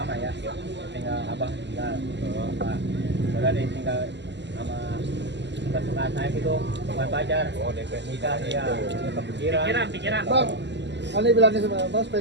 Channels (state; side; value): late; left; 0.51 ms